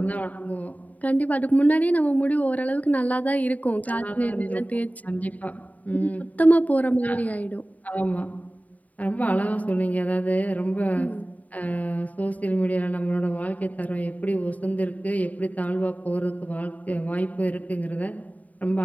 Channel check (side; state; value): right; late; 0.073 ms